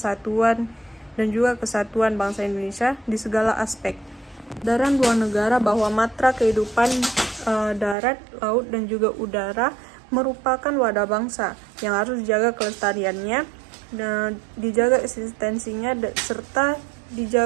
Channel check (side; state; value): left; drops out; at 8.0 s